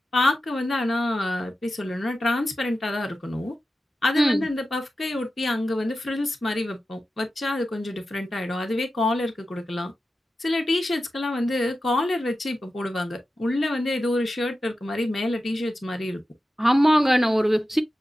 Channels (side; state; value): both; normal; correlation 0.92